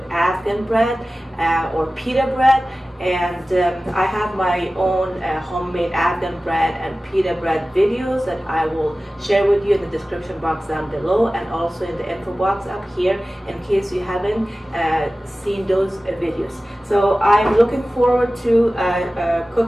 Afghan bread or pita bread, and I have my own homemade Afghan bread and pita bread videos that I will share with you in the description box down below, and also in the info box up here in case you haven't seen those videos. So I'm looking forward to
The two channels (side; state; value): both; normal; correlation 0.96